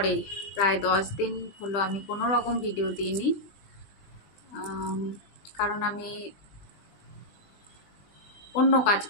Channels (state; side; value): late; right; 20 ms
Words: প্রায় 10 দিন হলো আমি কোনো রকম ভিডিও দিইনি। আম, কারণ আমি অন্য কাজ